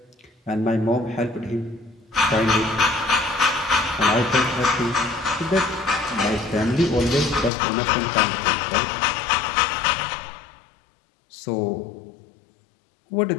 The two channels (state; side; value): drops out; right; at 7.5 s